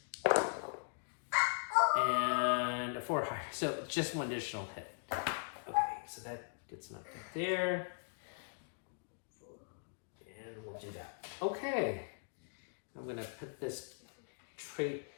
And a 4 higher. So just 1 additional hit. Okay, so that gets knocked out there. And we'll do that. Okay. I'm going to put this trait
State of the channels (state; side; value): silent; right; digital silence